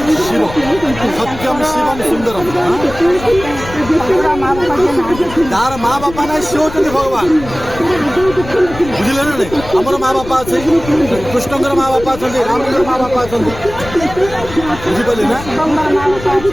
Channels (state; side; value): noise; left; rumble, 13 dB below the sound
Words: शिव सत्यम शिवम सुंदरम तार माँ बापा ना सी हूँ भगवान बुझे ना नहीं आमर माँ बापा अच्छे कृष्णकर माँ बापा अच्छा रामकर माँ बापा अच्छा बुझिपारे ना